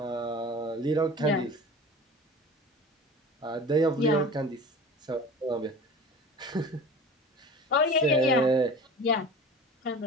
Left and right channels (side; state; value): both; normal; correlation 0.38